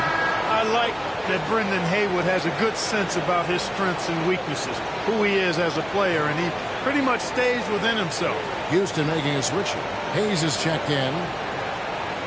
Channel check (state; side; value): identical; both; correlation 1.00